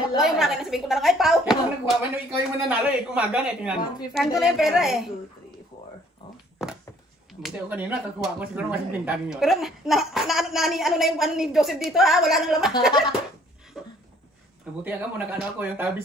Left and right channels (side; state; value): both; normal; correlation 0.59